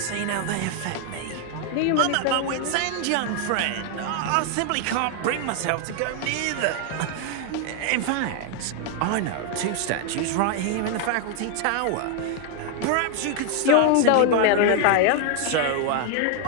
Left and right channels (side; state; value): both; different; correlation 0.00